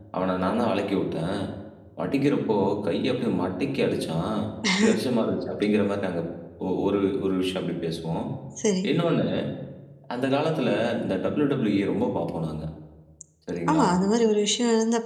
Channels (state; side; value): identical; both; correlation 1.00